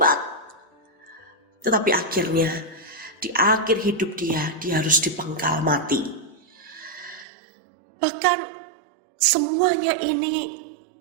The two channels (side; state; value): left; drops out; at 7.2 s